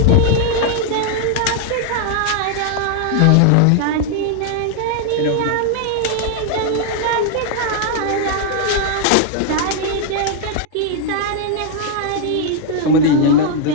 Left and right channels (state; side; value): different; both; correlation 0.00